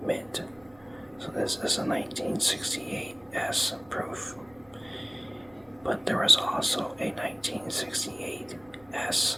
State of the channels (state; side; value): noise; right; rumble, 27 dB below the sound